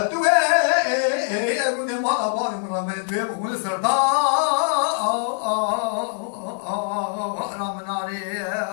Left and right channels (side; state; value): right; silent; digital silence